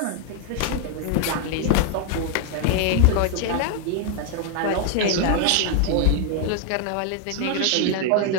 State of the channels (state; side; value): different; both; correlation 0.00